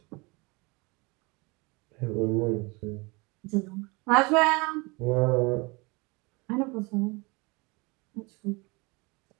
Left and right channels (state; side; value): quieter; left; 26.9 dB